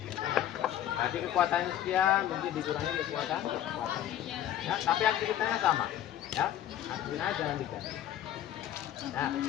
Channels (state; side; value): quieter; right; 11.6 dB